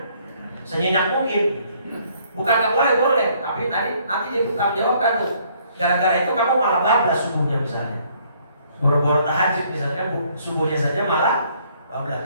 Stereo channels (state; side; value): inverted; both; correlation -0.64